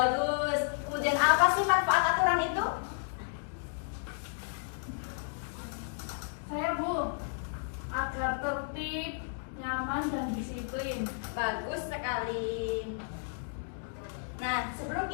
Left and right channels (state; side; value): silent; right; digital silence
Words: Kemudian apa sih manfaat aturan itu? Saya, Bu, agar tertib, nyaman, dan disiplin. Bagus sekali. Nah, sebelum